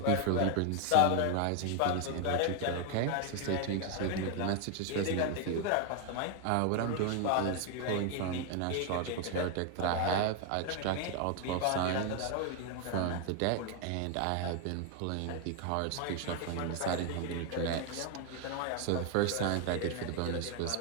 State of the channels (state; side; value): different; both; correlation 0.01